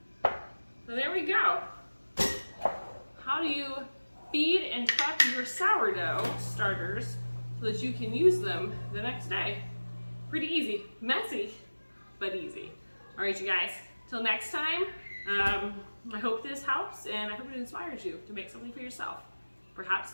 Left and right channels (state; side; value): inverted; both; correlation -1.00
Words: So there we go. How do you feed and prep your sourdough starters so that you can use them the next day? Pretty easy, messy, but easy. All right, you guys, till next time, I hope this helps and I hope it inspires you to make something for yourself. Perhaps